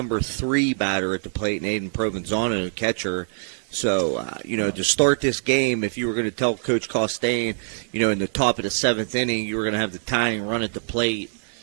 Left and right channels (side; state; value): left; silent; digital silence